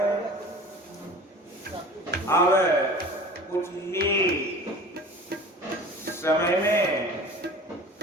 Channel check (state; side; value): normal; both; correlation 0.40